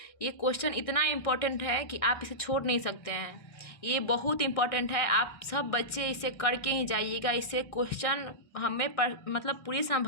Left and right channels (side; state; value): right; late; 1.6 ms